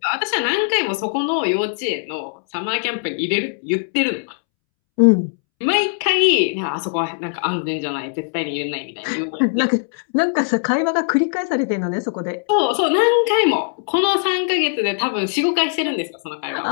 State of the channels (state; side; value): silent; right; 65 dB below the other